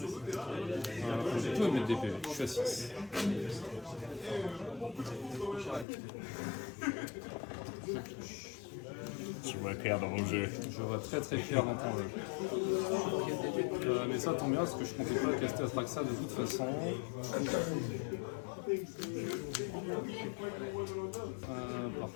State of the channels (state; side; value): drops out; right; at 5.9 s